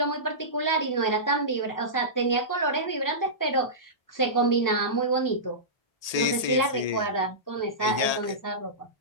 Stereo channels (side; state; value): right; late; 1.8 ms